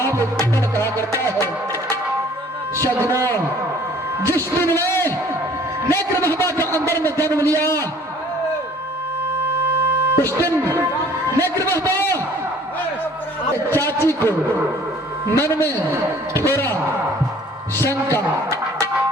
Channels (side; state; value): both; normal; correlation 0.54